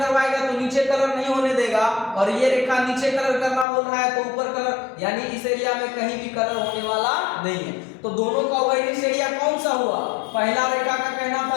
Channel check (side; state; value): right; drops out; at 3.7 s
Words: तो नीचे कलर नहीं होने देगा, और ये रेखा नीचे कलर करना बोल रहा है तो ऊपर कलर, यानी इस एरिया में कहीं भी कलर होने वाला नहीं है। तो दोनों का उभयनिष्ठ एरिया कौन सा हुआ, पहला रेखा का कहना था